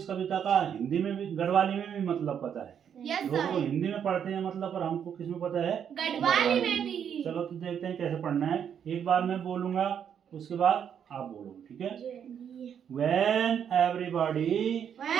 कविता का हिंदी में भी, गढ़वाली में भी मतलब पता है। लोग तो हिंदी में पढ़ते हैं मतलब, पर हमको किस में पता है? गढ़वाली में भी। चलो तो देखते हैं कैसे पढ़ना है। एक बार मैं बोलूंगा, उसके बाद आप बोलो, ठीक है? When everybody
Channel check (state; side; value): quieter; left; 8.3 dB